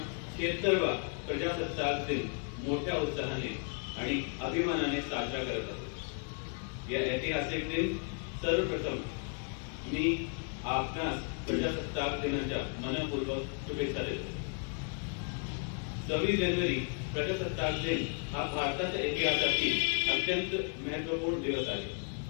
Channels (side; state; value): right; quieter; 38.7 dB